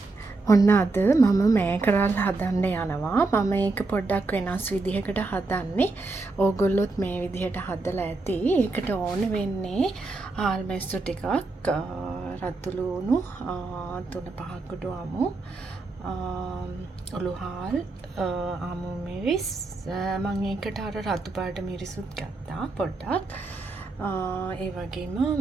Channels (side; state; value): left; quieter; 3.5 dB